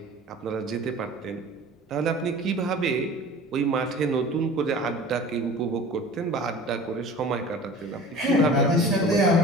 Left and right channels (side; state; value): both; normal; correlation 0.42